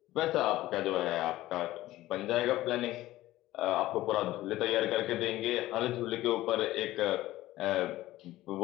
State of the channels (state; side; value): quieter; right; 16.1 dB